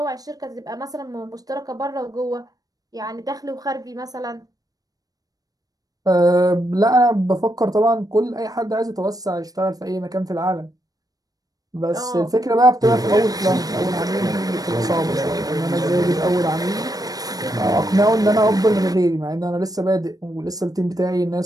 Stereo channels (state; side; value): late; left; 0.18 ms